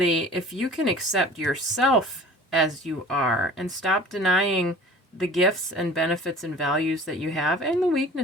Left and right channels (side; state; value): both; normal; correlation 0.44